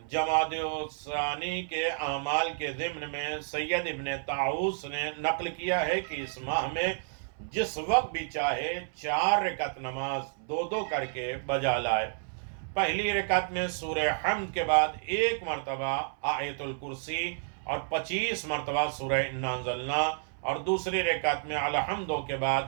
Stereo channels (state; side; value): silent; left; 58 dB below the other